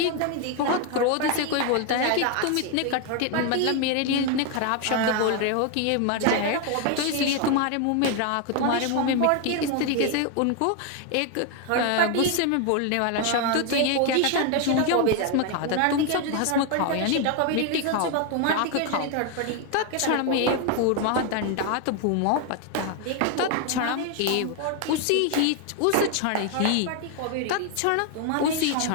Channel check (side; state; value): both; different; correlation 0.01